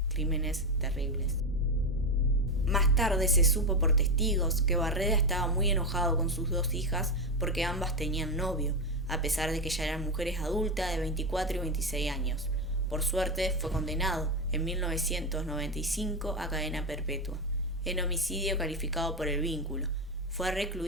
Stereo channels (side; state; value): both; normal; correlation 0.12